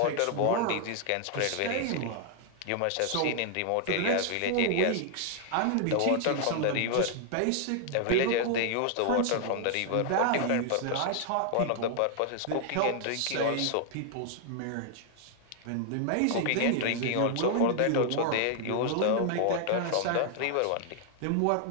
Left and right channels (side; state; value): both; different; correlation 0.00